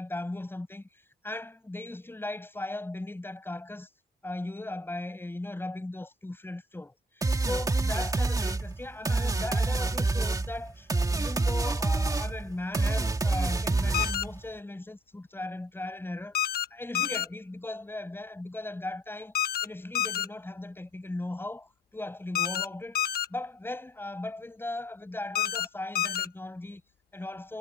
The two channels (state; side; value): normal; both; correlation 0.64